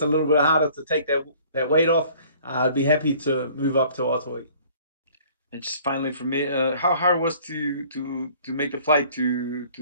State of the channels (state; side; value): inverted; both; correlation -0.53